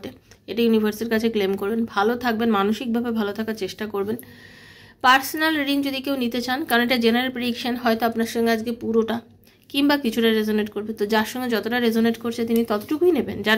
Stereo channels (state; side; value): identical; both; correlation 1.00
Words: এটা ইউনিভার্সের কাছে ক্লেম করবেন। ভালো থাকবেন, মানসিকভাবে ভালো থাকার চেষ্টা করবেন। পার্সোনাল রিডিং যদি কেউ নিতে চান, কারণ এটা জেনারেল প্রেডিকশন, হয়তো আপনার সঙ্গে আজকে পুরোটা কিংবা কিছুটা রেজোনেট করবে, তো যার সঙ্গে যতটা রেজোনেট করছে তিনি ততটুকুই নেবেন, যার